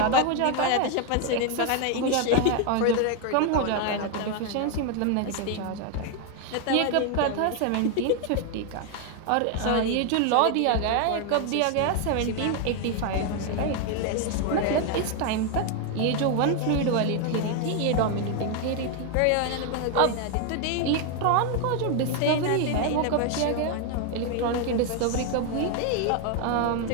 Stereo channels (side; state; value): both; different; correlation 0.00